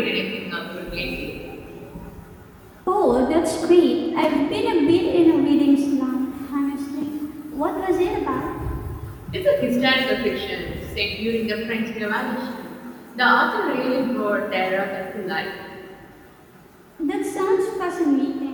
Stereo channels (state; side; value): identical; both; correlation 1.00